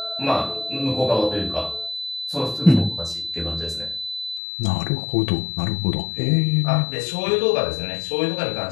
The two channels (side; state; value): right; drops out; at 4.4 s